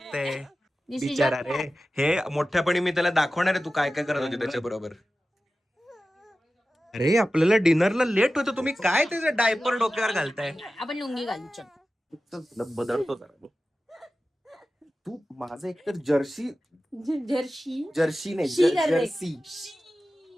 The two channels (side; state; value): both; normal; correlation 0.94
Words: बिचारा रे. हे मोठ्यापणी मी त्याला दाखवणार आहे तू काय काय करत होती त्याच्या बरोबर. अरे आपल्याला डिनरला लेट होतं, तुम्ही काय त्याचं डायपर डोक्यावर घालताय? आपण लुंगी घालू चल. बदलतो जरा. तू माझं एकतर जर्सी जर्सी जर्सी नाही शी कर रे. जर्सी.